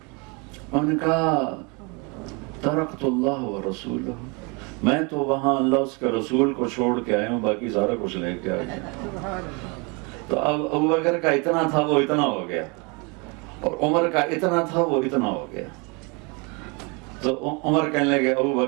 انہوں نے کہا ترکت اللہ و رسولہ، میں تو وہاں اللہ اس کے رسول کو چھوڑ کے آیا ہوں، باقی سارا کچھ لے کے آیا۔ تو اب ابو بکر کا اتنا تھا وہ اتنا ہو گیا، اور عمر کا اتنا تھا وہ اتنا ہو گیا۔ تو عمر کہنے لگے ابو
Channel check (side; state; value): left; quieter; 30.6 dB